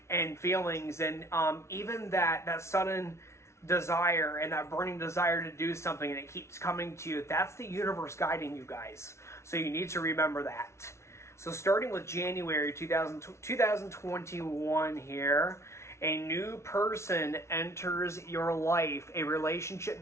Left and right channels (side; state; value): right; late; 0.13 ms